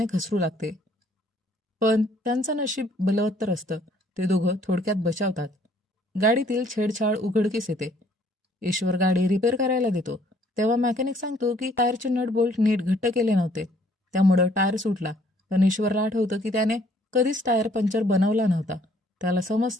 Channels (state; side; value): normal; both; correlation 0.62